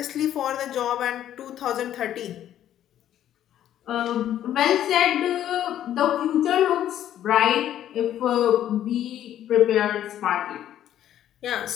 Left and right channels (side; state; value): right; quieter; 11.4 dB